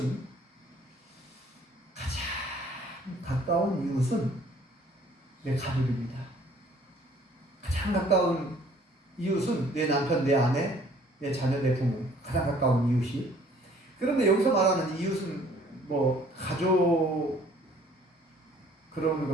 가장 가까운 이웃은 내 가족입니다. 가장 가까운 이웃은 내 남편, 내 아내, 내 자녀, 내 부모. 가장 가까운 이웃이. 그런데 여기서 말하는 이웃은 뭐 가족 그런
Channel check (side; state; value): both; normal; correlation 0.57